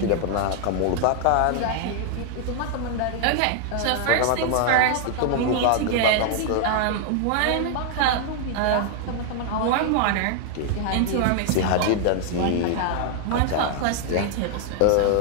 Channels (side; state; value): both; different; correlation 0.00